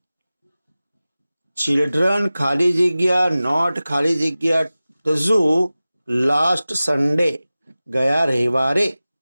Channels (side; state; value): both; inverted; correlation -0.97